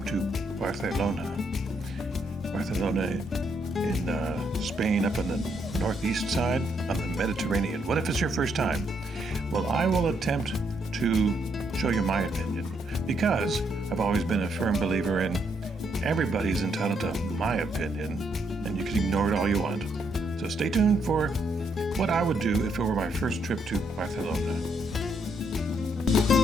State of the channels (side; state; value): both; normal; correlation 0.74